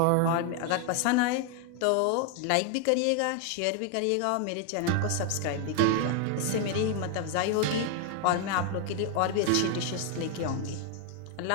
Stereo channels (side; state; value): both; different; correlation 0.00